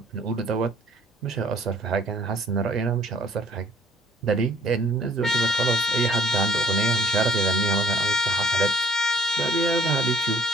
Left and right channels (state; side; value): normal; both; correlation 0.58